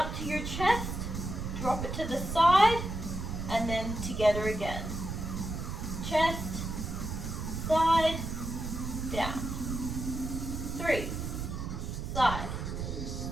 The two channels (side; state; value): right; noise; rumble, 4 dB below the sound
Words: to your chest. Drop it to the side, and then together again. Chest, side, down. 3, side,